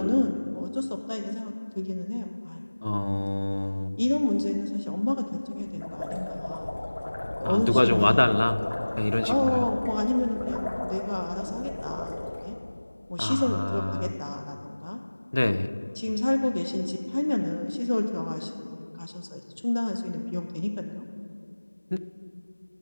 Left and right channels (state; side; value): inverted; both; correlation -1.00